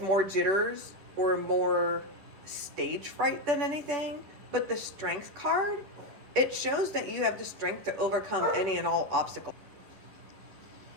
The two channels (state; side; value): late; left; 11 ms